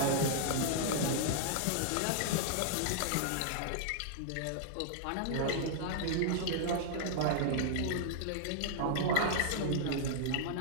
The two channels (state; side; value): different; both; correlation -0.01